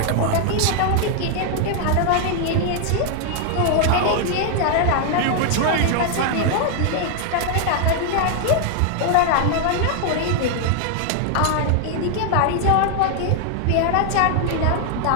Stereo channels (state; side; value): different; both; correlation 0.00